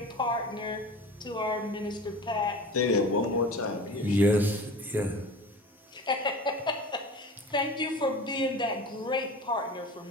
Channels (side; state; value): both; normal; correlation 0.36